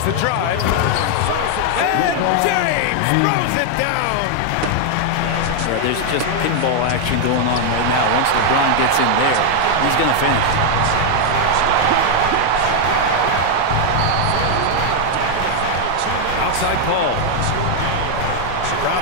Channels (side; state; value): both; different; correlation 0.00